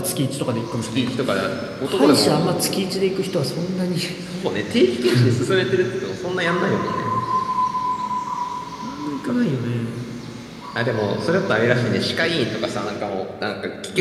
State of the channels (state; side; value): identical; both; correlation 1.00